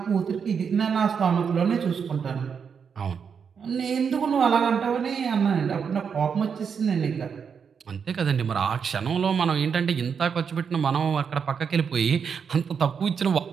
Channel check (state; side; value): quieter; left; 6.6 dB